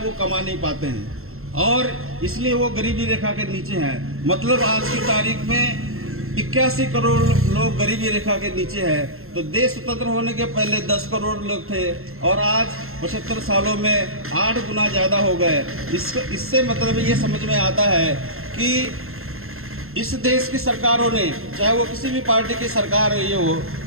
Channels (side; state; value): left; late; 0.62 ms